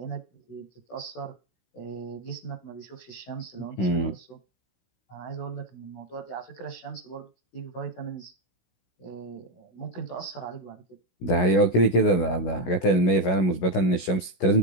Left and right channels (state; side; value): late; right; 16 ms